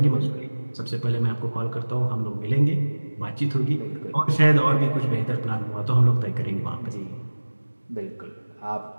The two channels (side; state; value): both; inverted; correlation -1.00